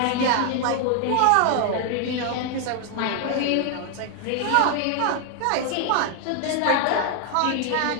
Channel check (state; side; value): different; both; correlation 0.00